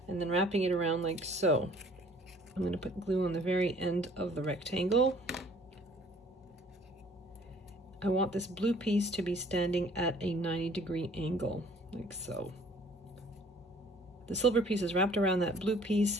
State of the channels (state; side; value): normal; both; correlation 0.55